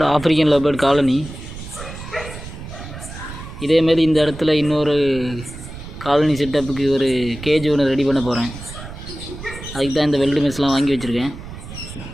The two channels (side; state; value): right; noise; rumble, 12 dB below the sound